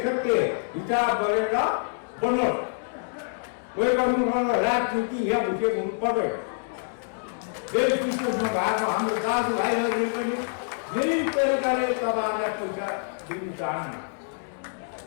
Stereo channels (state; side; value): silent; right; 61 dB below the other